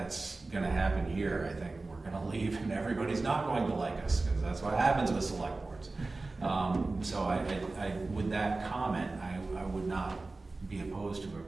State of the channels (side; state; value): left; quieter; 3.4 dB